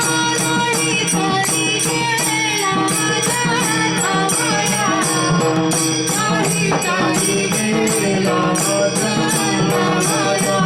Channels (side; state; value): both; identical; correlation 1.00